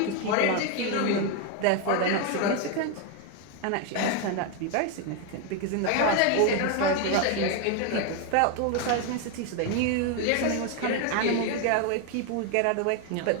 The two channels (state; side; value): different; both; correlation 0.01